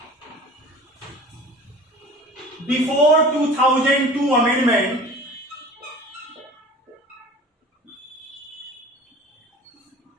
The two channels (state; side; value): normal; both; correlation 0.41